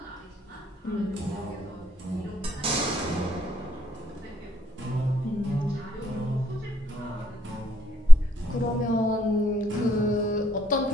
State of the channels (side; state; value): both; normal; correlation 0.77